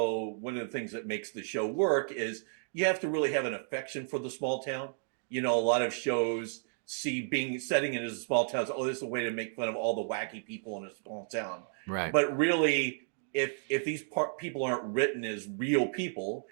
one of the things that makes the show work is you have to really have an affection for the small town. A lot of shows see being setting it as a small town, so, oh, this is a way to make fun of all the wacky people in a small town. Right. But really, if these people aren't written as real people,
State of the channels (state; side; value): silent; left; digital silence